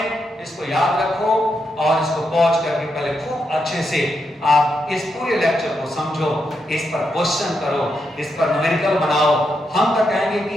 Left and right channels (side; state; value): both; normal; correlation 0.83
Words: इसको याद रखो और इसको पॉज करके पहले खूब अच्छे से आप इस पूरे लेक्चर को समझो, इस पर क्वेश्चन करो, इस पर न्यूमेरिकल बनाओ। हम तो कहेंगे